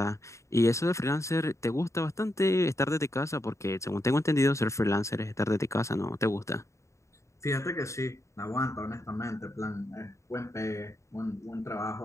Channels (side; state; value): right; late; 0.14 ms